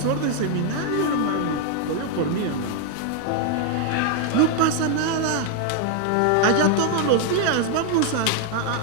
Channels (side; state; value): both; different; correlation 0.00